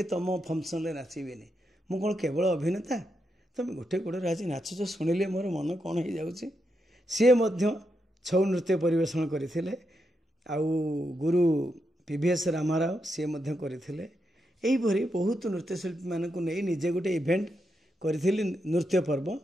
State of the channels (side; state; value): both; normal; correlation 0.84